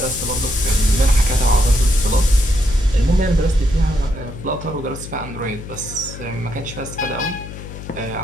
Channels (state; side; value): noise; left; hum, 12 dB below the sound